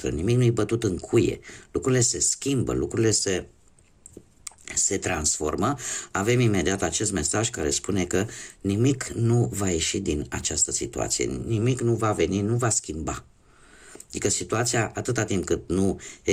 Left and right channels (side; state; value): both; identical; correlation 1.00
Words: nimic nu-i bătut în cuie, lucrurile se schimbă, lucrurile se transformă, avem imediat acest mesaj care spune că nimic nu va ieși din această situație, nimic nu va veni, nu va schimba. Adică situația, atâta timp cât nu